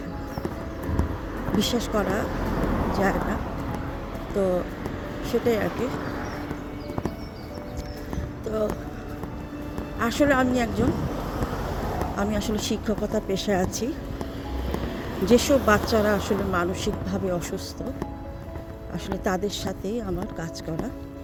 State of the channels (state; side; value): identical; both; correlation 1.00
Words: বিশ্বাস করা যায় না। তো সেটাই আর কি। তো আসলে আমি আসলে শিক্ষকতা পেশায় আছি। যেসব বাচ্চারা আসলে মানসিকভাবে অসুস্থ, আসলে তাদের সাথেই আমার কাজ করা।